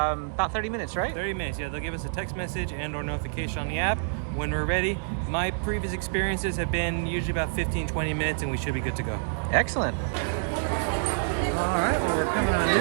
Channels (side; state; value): left; silent; digital silence